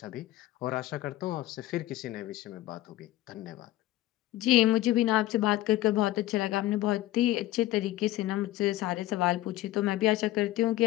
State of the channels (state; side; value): quieter; right; 15.6 dB